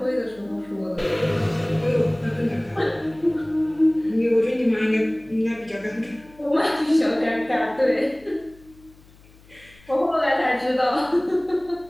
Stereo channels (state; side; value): noise; left; hum, 26 dB below the sound